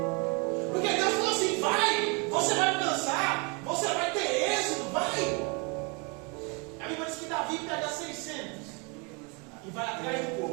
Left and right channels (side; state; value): left; quieter; 32.3 dB